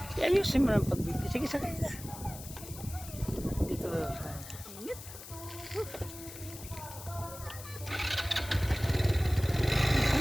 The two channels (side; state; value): left; noise; hiss, 14 dB below the sound